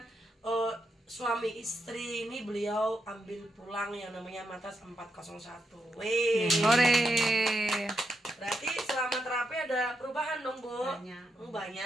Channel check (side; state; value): both; normal; correlation 0.83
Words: suami istri ini beliau ambil pulang yang namanya Matas 401. Wih. Hore. Berarti selama terapi ada perubahan dong Bu?